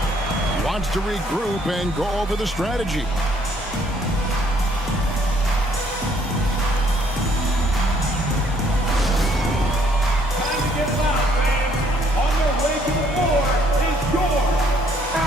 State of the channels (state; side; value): normal; both; correlation 0.65